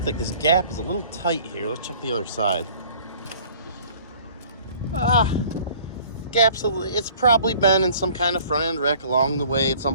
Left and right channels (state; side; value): inverted; both; correlation -0.51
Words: like this gap is a little tight here. Let's check the other side. It's probably been in some kind of front end wreck along the way at